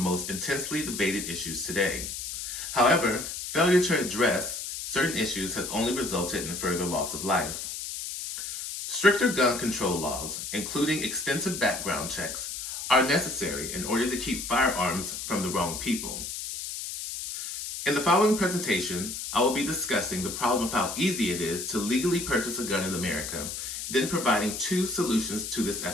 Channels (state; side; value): noise; left; hiss, 6 dB below the sound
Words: most intensely debated issues today. However, failure to address certain issues has only resulted in further loss of life. Stricter gun control laws, including extensive background checks, are necessary in order to keep firearms from the wrong people. In the following presentation, I will be discussing the problem of how easy it is to legally purchase a gun in America, then providing 2 solutions to this